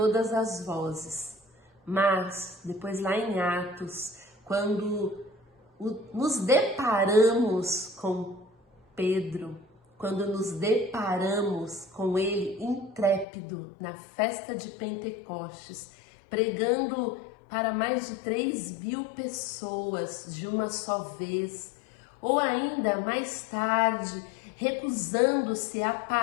as vozes. Mas depois lá em Atos, quando nos deparamos com Pedro, quando nos deparamos com ele intrépido na festa de Pentecostes, pregando para mais de 3.000 pessoas de uma só vez, ou ainda mais tarde, recusando-se a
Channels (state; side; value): drops out; right; at 13.2 s